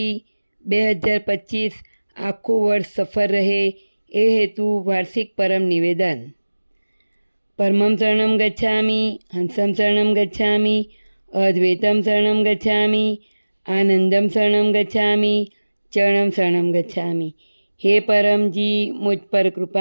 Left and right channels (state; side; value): inverted; both; correlation -1.00